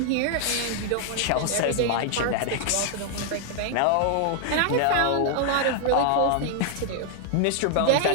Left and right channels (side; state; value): both; different; correlation 0.00